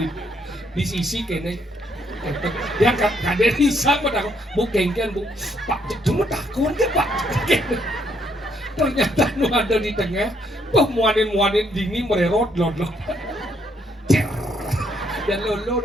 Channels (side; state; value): both; normal; correlation 0.72